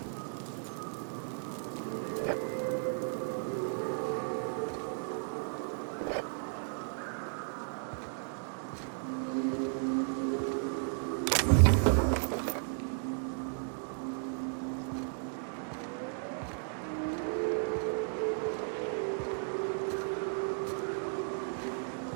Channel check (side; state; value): left; silent; digital silence